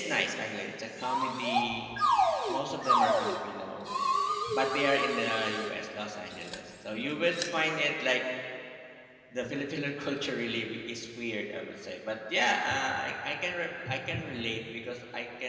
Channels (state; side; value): identical; both; correlation 1.00